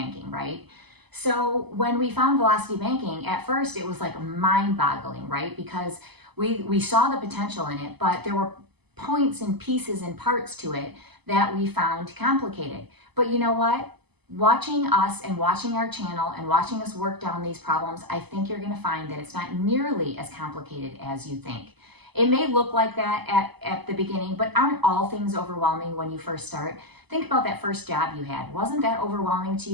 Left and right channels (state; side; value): late; left; 0.99 ms